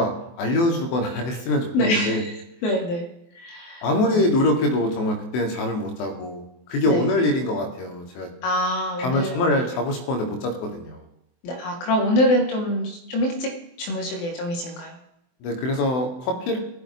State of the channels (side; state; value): right; late; 24 ms